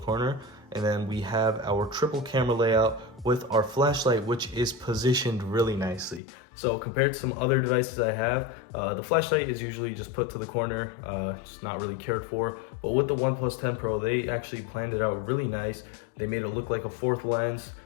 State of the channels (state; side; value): drops out; right; at 6.2 s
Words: And then we have our triple camera layout with our flashlight, which is positioned really nicely. So compared to some other devices I have, the flashlight is usually just put to the corner. It's not really cared for. But with the OnePlus 10 Pro, they actually planned it out really nice. They made it look like a fourth lens,